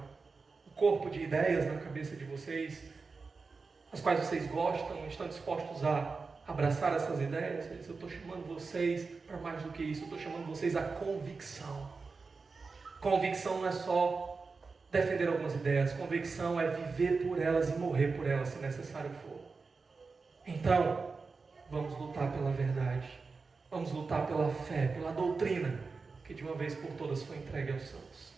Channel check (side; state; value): left; quieter; 4.4 dB